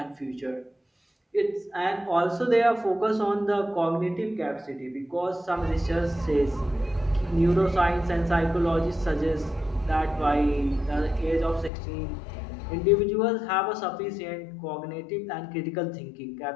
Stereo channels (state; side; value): drops out; right; at 11.7 s